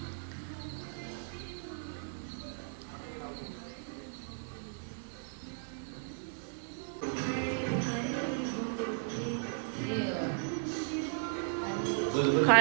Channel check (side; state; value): left; silent; 54 dB below the other